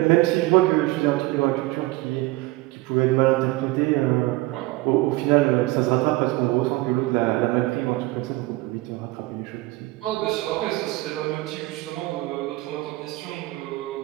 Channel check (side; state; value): left; quieter; 20.5 dB